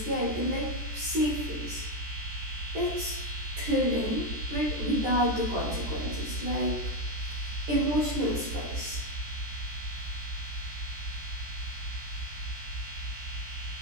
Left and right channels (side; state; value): left; late; 13 ms